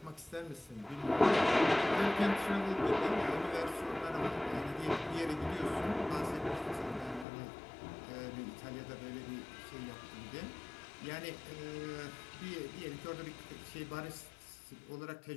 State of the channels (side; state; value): right; drops out; at 7.2 s